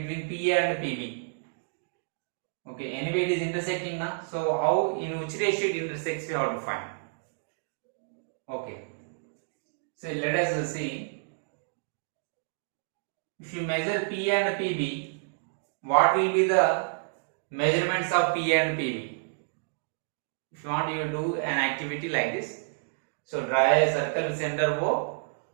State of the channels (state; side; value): silent; left; digital silence